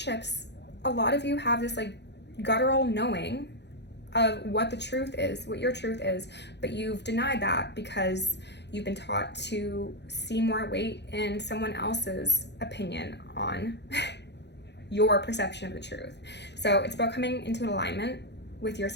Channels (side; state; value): right; late; 0.50 ms